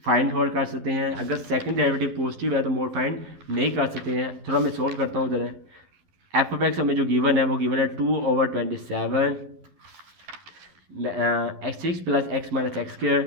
फाइंड आउट कर सकते हैं, अगर सेकंड डेरिवेटिव पॉजिटिव है तो मोड फाइंड नहीं कर सकते हैं। थोड़ा मैं सोल्व करता हूँ ज़रा। एफ ऑफ एक्स हमें जो गिवन है वो गिवन है 2/27 6 + x - x²,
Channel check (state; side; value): late; left; 11 ms